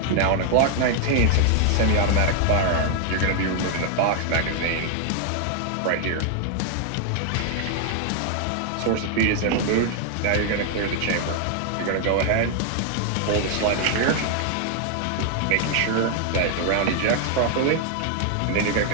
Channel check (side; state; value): both; different; correlation 0.00